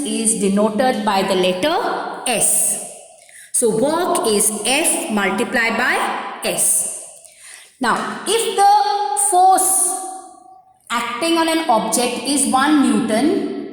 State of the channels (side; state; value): both; identical; correlation 1.00